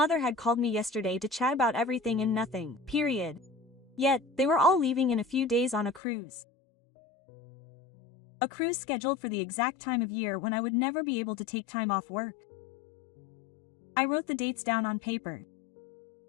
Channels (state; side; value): drops out; right; at 6.0 s